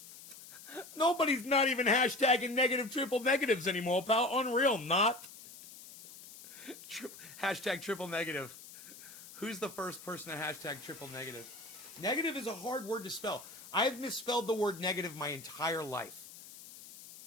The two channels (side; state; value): left; noise; hiss, 17 dB below the sound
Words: Nobody's not even hashtagging negative triple negatives anymore, pal. Unreal, not. Hashtag triple negative. Who's the first person to hashtag triple negative? Negative is a hard word to spell. I've misspelled the word negative my entire life.